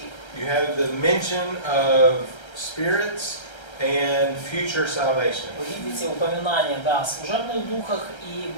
you have the mention of spirits and future salvation. вы видите упоминание, да, о служебных духах и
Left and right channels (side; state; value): right; late; 1.3 ms